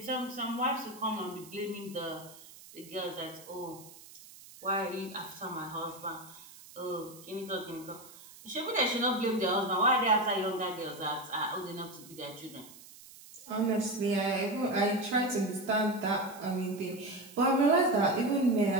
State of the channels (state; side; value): noise; right; hiss, 19 dB below the sound